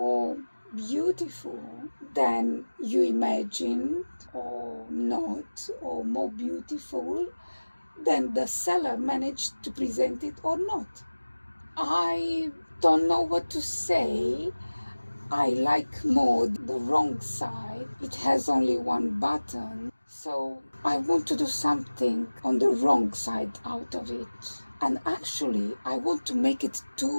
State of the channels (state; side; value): inverted; both; correlation -1.00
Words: beautiful than you imagined, or not, or more beautiful than the seller managed to present it or not. I don't know what to say. I like more the wrong side. It has only one button, so I want to do something on the wrong side out of it. And actually, I want to make it